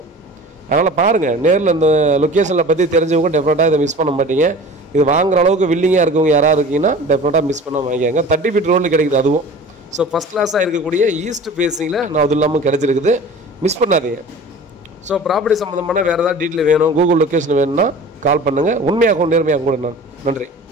அதனால் பாருங்கள், நேரில் இந்த லொக்கேஷனில் பற்றி தெரிஞ்சவங்க டெஃபினட்டாக இதை மிஸ் பண்ண மாட்டீங்க. இது வாங்குற அளவுக்கு வில்லிங்காக இருக்கவங்க யாராவது இருக்கீங்கன்னா டெஃபினட்டாக மிஸ் பண்ண வாங்கிக்காங்க. 30 ஃபீட் ரோடில் கிடைக்குது அதுவும். ஃபஸ்ட் கிளாஸாக இருக்கக்கூடிய ஈஸ்ட் ஃபேஸிங்கில் நான் அது இல்லாமல் கிடச்சிருக்குது. மிஸ் பண்ணாதீங்க. ப்ராப்பர்ட்டி சம்மந்தமான வேறு ஏதாவது டீட்டெயில் வேணும், கூகுள் லொக்கேஷன் வேணும்னா கால் பண்ணுங்கள். உண்மையாகவும் நேர்மையாகவும் கூட நன்றி.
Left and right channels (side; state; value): both; normal; correlation 0.40